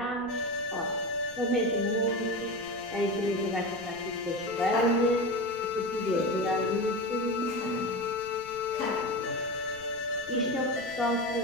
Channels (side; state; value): right; noise; rumble, 21 dB below the sound